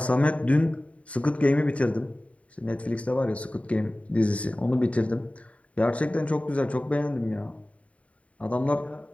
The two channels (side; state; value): right; late; 0.065 ms